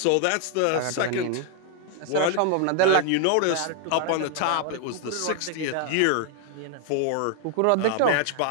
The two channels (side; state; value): both; different; correlation 0.00